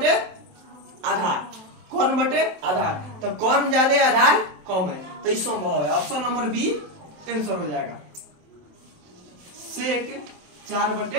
आधार, कॉर्न बटे आधार, तो कॉर्न ज्यादा आधार कम है, तो ये संभव है। ऑप्शन नंबर बी आंसर हो जाएगा। सेक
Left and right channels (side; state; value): left; late; 27 ms